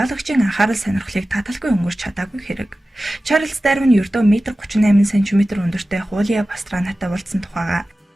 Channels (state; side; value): normal; both; correlation 0.95